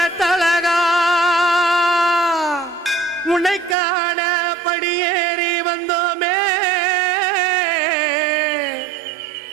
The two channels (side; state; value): left; drops out; at 3.8 s